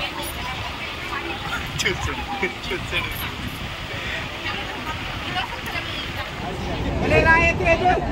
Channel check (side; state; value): both; identical; correlation 1.00